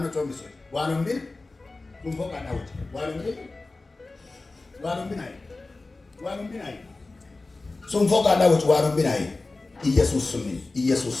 ጾምሽ ዋሉም ቤት ቁንፎ ቀጣውጭ ዋሉም ቤት ዋሉም ቢናይ ዋሉም ቢናይ ሱንፎ ቀጣውጭ ዋሉም ቢናይ ኢየሱስ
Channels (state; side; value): quieter; right; 3.4 dB